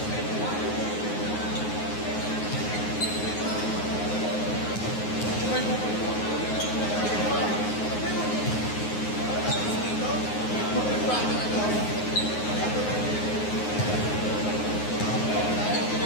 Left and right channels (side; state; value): right; late; 9.5 ms